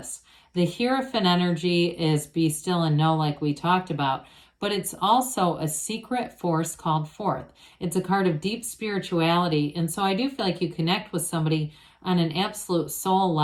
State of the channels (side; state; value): both; identical; correlation 1.00